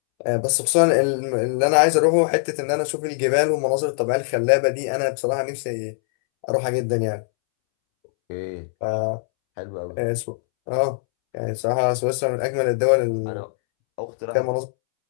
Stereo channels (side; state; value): right; silent; 64 dB below the other